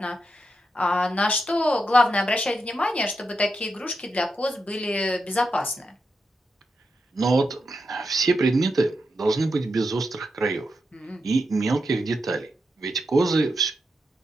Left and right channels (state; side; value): normal; both; correlation 0.86